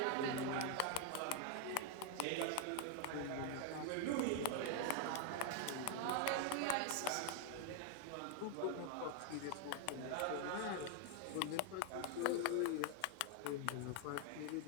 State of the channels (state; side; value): different; both; correlation 0.00